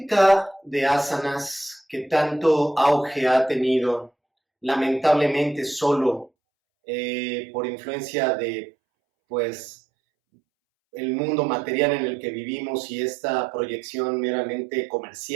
de asanas que tanto auge ha tenido, lamentablemente solo por influencia de, pues, el mundo material en el que vivimos y esta proyección meramente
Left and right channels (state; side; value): drops out; left; at 6.3 s